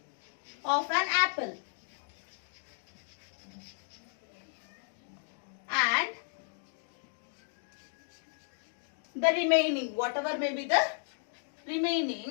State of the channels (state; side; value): silent; right; digital silence